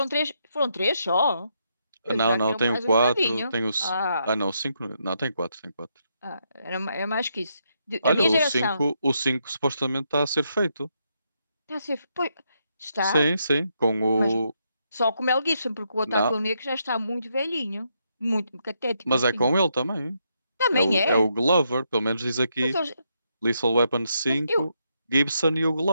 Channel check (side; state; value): both; inverted; correlation -0.79